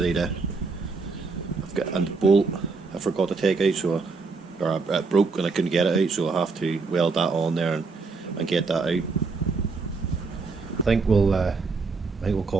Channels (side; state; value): left; quieter; 4.3 dB